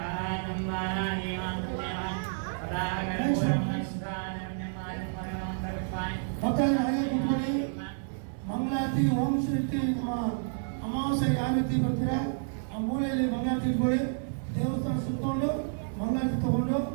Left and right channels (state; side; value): silent; left; 58 dB below the other